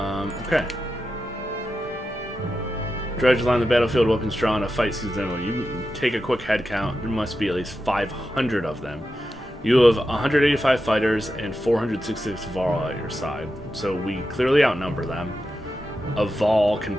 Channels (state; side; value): normal; both; correlation 0.89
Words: Okay. Dredge line the battlefield, weapons drawn, a fight season. You take a quick head count. There must be at least 500 of them. You have 185 fighters and 466 Varl at your side. So we clearly outnumber them. A Varl can